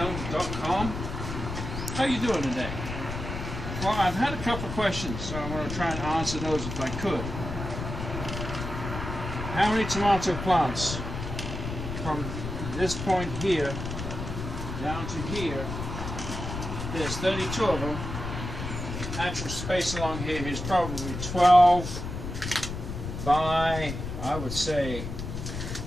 How you doing today? Well, I've had a couple of questions, so I'm going to try and answer those if I could. How many tomato plants from this point here down to here? There's 32 of them. Actual space along here is probably 12 by, I would say,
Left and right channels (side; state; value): left; noise; rumble, 6 dB below the sound